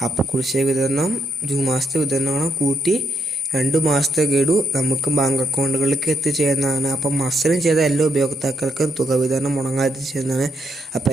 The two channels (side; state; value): both; normal; correlation 0.77